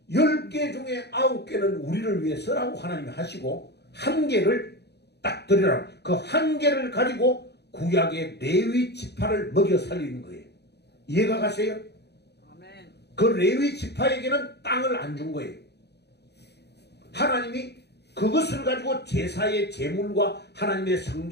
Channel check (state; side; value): late; right; 0.48 ms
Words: 10개 중에 9개는 우리를 위해서라고 하나님이 하시고 1개를 딱 드리라고, 그 1개를 가지고 구약의 레위 지파를 먹여 살리는 거예요. 이해가 가세요? 아멘. 그 레위 지파에게는 땅을 안 준 거예요. 하나님이 그것을 가지고 제사의 제물과 하나님의